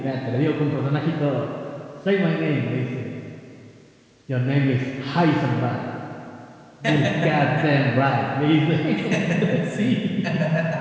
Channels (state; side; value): identical; both; correlation 1.00